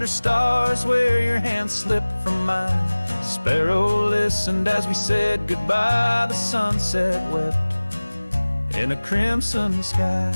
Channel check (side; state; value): both; inverted; correlation -1.00